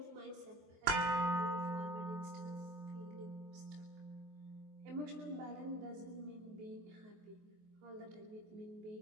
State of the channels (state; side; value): late; left; 23 ms